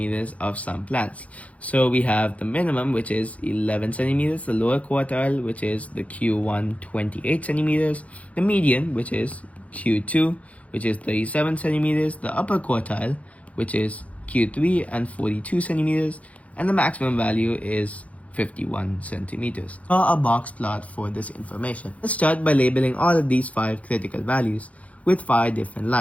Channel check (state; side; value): late; right; 0.066 ms